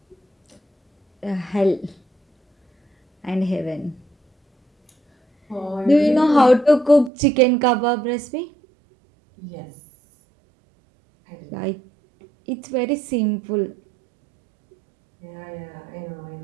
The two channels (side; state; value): left; drops out; at 7.1 s